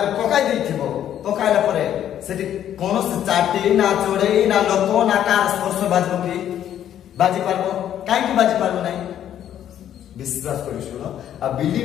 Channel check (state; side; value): quieter; right; 10.6 dB